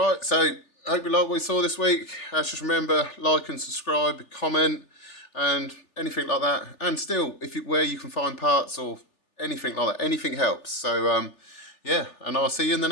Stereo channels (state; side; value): late; right; 3.4 ms